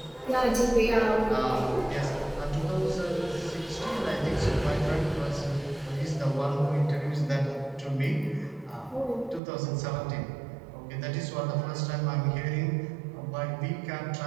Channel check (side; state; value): left; drops out; at 9.4 s